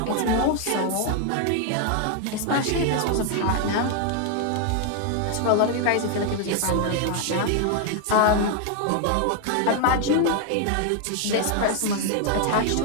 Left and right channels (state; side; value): different; both; correlation 0.01